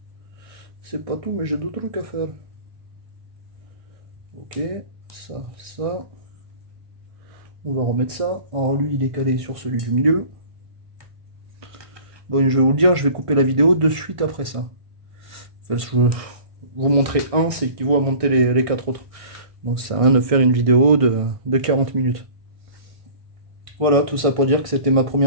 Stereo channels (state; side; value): late; left; 1.5 ms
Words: C'est pas tout, mais j'ai d'autres trucs à faire. Ok, ça, ça. On va remettre ça. Alors lui, il est calé sur celui du milieu. Bon, je vais vous le dire, je vais couper la vidéo de suite après ça. Enfin, je vais vous montrer un, c'est qu'il vaut à monter les 4 autres. Donc ça sert à rien de faire une vidéo de 40 minutes. Voilà, tout ça pour dire que c'était ma